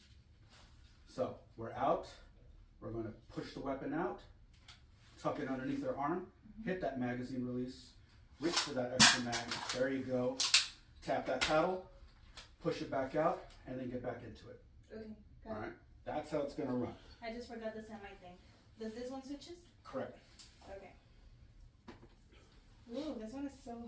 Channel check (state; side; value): identical; both; correlation 1.00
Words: So we're out. We're going to push the weapon out, tuck it underneath our arm, hit that magazine release, reach for that extra mag. There you go. Tap that paddle, push it back out, and then get back into it. Okay, got All it. right. That's how it's going to run. I just forgot the semi thing. Does this one switches? Correct. Okay. Ooh, this one is so